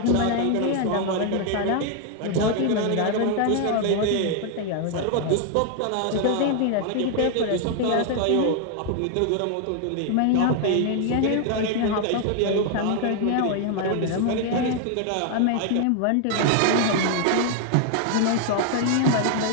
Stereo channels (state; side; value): different; both; correlation 0.00